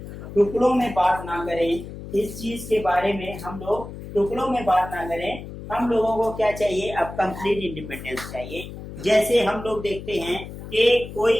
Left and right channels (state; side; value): noise; left; hum, 11 dB below the sound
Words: टुकड़ों में बात ना करें, इस चीज के बारे में हम लोग टुकड़ों में बात ना करें। हम लोगों को क्या चाहिए? अब कंप्लीट इंडिपेंडेंस चाहिए। जैसे हम लोग देखते हैं कि